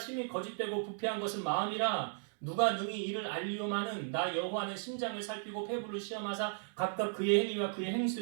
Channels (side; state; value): left; silent; digital silence